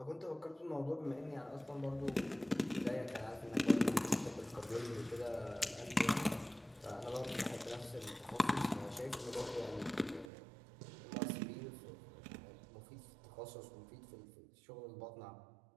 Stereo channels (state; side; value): drops out; left; at 10.3 s